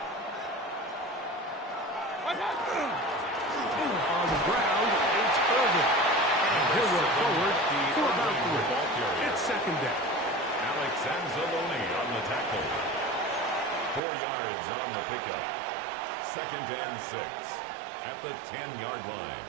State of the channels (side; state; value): left; drops out; at 14.0 s